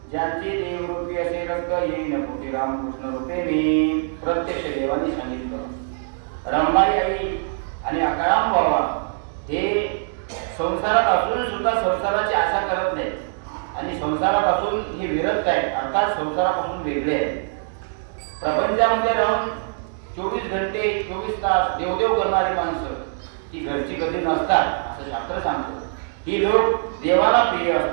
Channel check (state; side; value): silent; left; digital silence